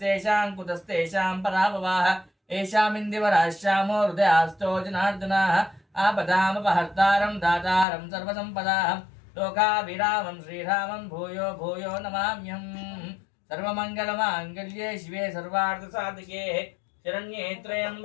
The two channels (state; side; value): drops out; right; at 7.9 s